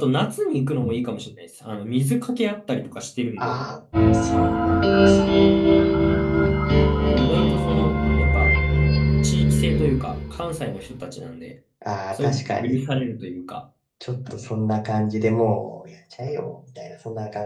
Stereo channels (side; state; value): both; identical; correlation 1.00